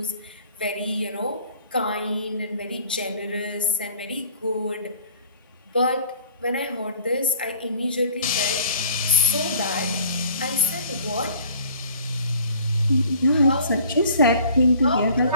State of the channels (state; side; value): inverted; both; correlation -0.52